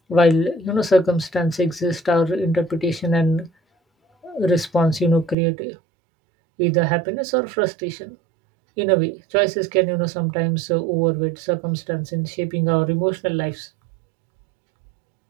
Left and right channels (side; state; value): left; drops out; at 5.4 s